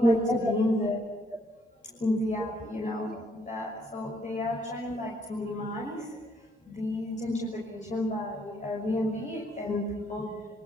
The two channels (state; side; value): normal; both; correlation 0.70